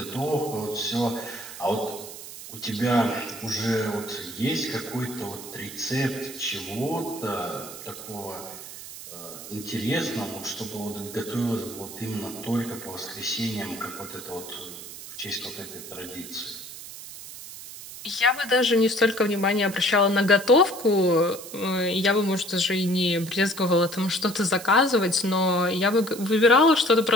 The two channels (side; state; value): right; noise; hiss, 13 dB below the sound